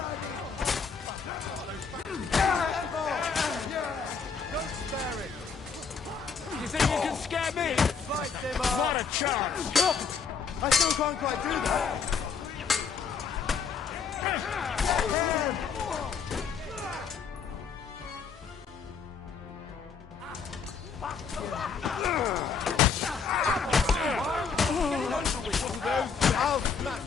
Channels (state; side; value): quieter; right; 5.9 dB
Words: Don't spare it! You think you can scare me? Fight them all! What a chance! I still can't quite do that! I'll